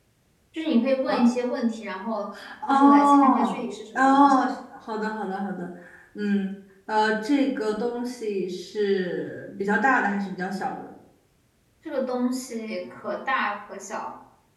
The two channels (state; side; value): identical; both; correlation 1.00